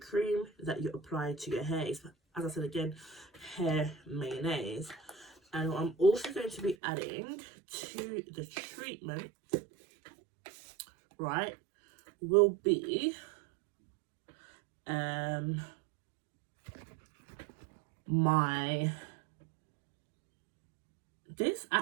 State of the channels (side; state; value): left; drops out; at 6.8 s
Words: that you apply to your hair. It's, as I said again, hair mayonnaise. And what I'm also going to be adding to the treatment, right, will be this